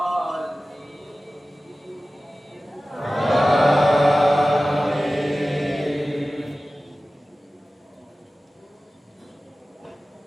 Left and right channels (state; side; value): normal; both; correlation 0.96